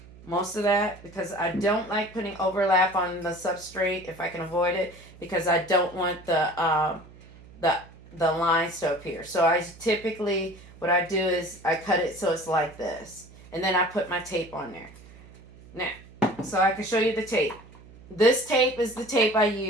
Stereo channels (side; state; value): right; noise; hum, 21 dB below the sound